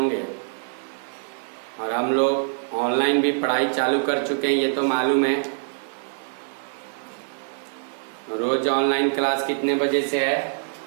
और हम लोग ऑनलाइन भी पढ़ाई चालू कर चुके हैं, ये तो मालूम है। रोज ऑनलाइन क्लास कितने बजे से है?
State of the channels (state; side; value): silent; left; 57 dB below the other